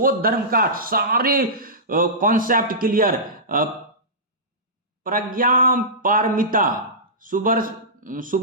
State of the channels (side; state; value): both; normal; correlation -0.17